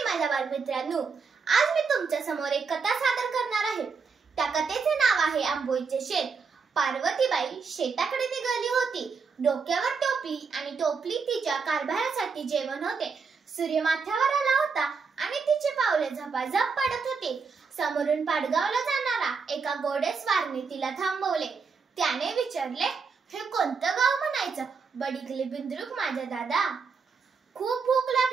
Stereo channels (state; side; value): quieter; left; 5.2 dB